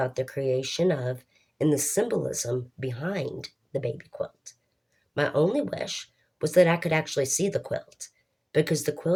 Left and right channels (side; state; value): both; identical; correlation 1.00